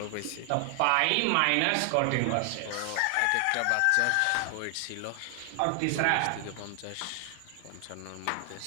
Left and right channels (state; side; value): different; both; correlation 0.00